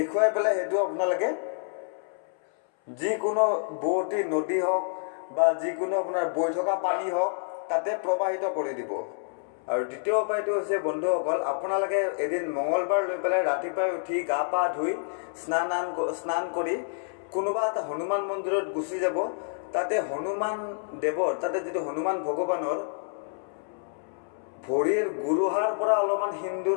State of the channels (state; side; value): silent; right; 59 dB below the other